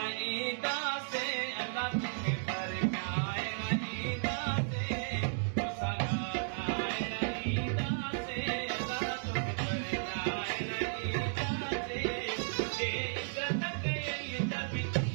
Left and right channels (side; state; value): left; silent; digital silence